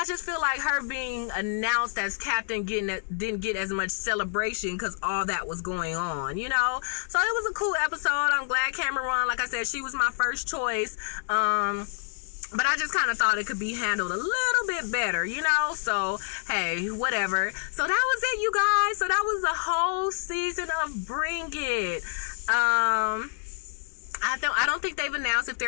just feel like her being announced as captain didn't get as much celebration because all that was going on, So it was a cool episode. I'm glad Cameron won. Like I said, she was my first choice. But I just kind of thought it could be handled a little bit better, So, hey, whatever. So that was it, you guys. So that was the whole season of Bring It. I don't think they've announced if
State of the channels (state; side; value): silent; right; digital silence